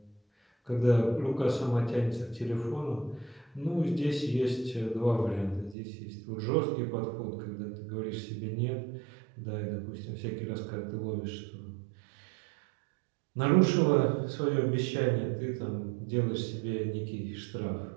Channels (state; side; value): drops out; left; at 5.8 s